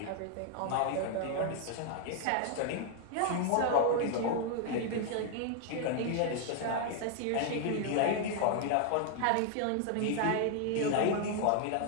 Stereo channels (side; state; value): both; different; correlation 0.00